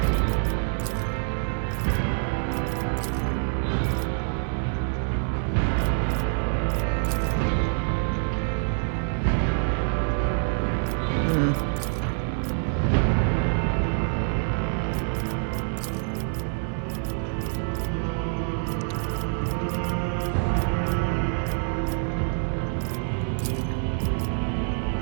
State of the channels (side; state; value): left; silent; 61 dB below the other